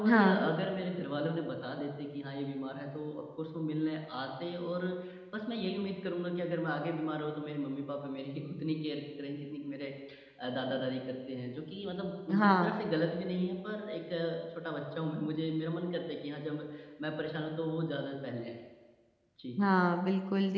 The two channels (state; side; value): identical; both; correlation 1.00